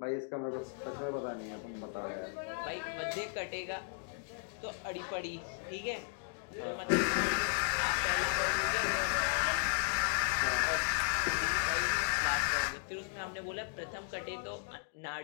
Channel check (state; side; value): silent; right; digital silence